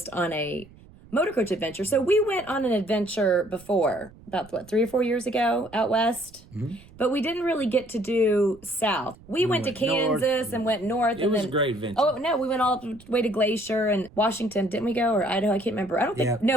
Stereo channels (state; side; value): noise; right; rumble, 23 dB below the sound